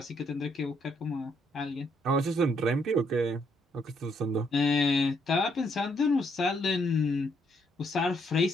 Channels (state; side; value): normal; both; correlation 0.72